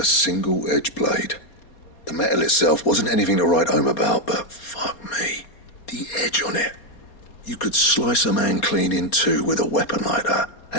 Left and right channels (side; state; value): right; late; 4.2 ms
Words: single-edged blade. The metal itself wasn't anything to write home about, but fuck me. The edge on it. You could slice a man clean in two with a weapon like that,